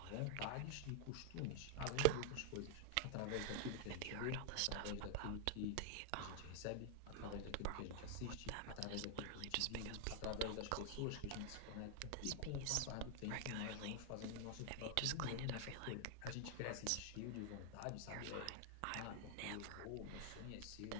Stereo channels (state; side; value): different; both; correlation 0.00